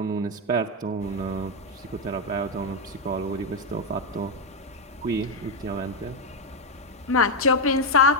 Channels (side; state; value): both; normal; correlation 0.03